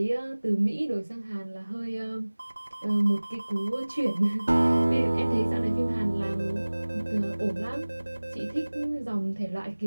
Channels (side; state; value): both; inverted; correlation -1.00